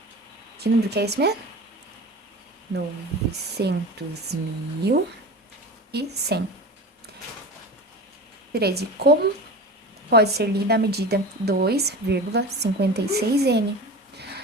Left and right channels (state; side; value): normal; both; correlation 0.32